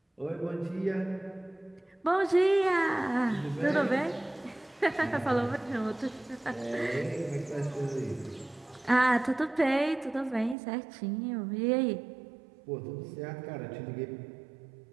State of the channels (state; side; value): drops out; left; at 10.6 s